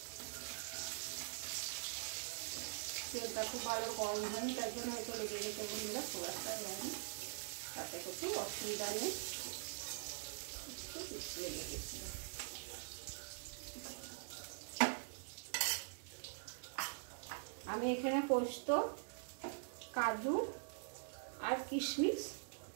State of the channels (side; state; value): left; silent; digital silence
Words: তেলটা খুব ভালো গরম হয়নি, তার জন্য হয়তো লেগে গেছে বন্ধুরা, সোয়াটা হয়নি, তাতে কিছু অসুবিধা নেই। লেগে গেছে। আমি এখানে পোস্ত, কাজু আর কিশমিশ